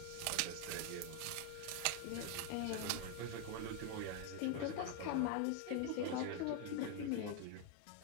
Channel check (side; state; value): both; different; correlation 0.01